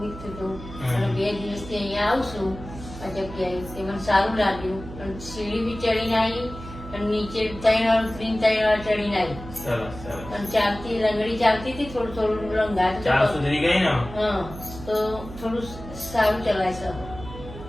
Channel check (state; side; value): noise; right; hum, 13 dB below the sound